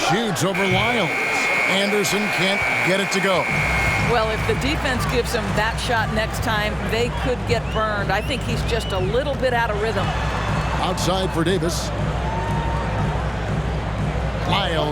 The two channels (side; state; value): both; identical; correlation 1.00